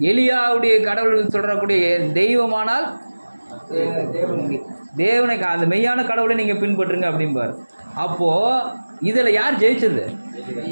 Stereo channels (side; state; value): both; inverted; correlation -1.00